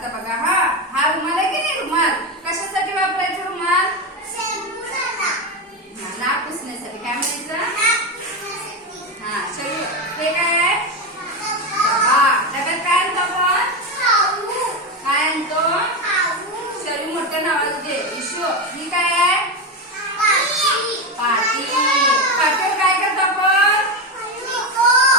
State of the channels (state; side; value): normal; both; correlation 0.14